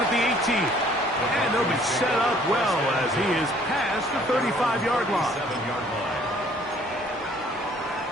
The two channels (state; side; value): normal; both; correlation 0.58